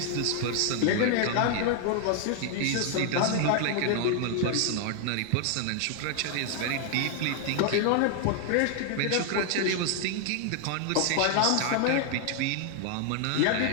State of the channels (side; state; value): both; different; correlation 0.00